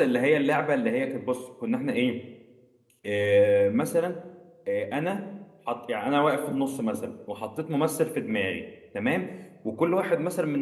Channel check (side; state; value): both; identical; correlation 1.00